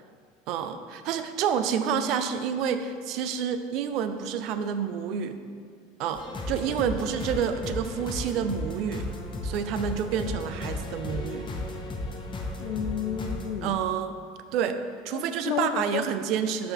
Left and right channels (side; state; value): left; quieter; 4.5 dB